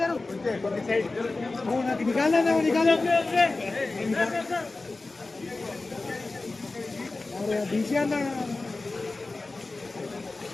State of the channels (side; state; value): right; quieter; 3.4 dB